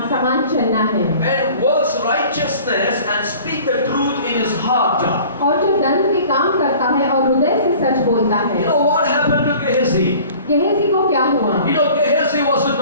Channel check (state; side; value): inverted; both; correlation -0.47